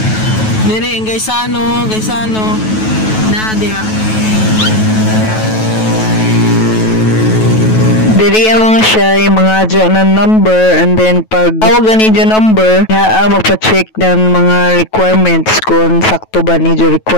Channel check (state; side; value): late; right; 9.2 ms